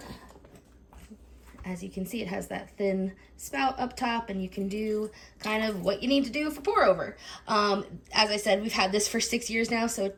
As you can see, it has that thin spout up top and you can do kind of what you need to do for pour over. As I said, we've had this for 6 years now, so it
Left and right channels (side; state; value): both; identical; correlation 1.00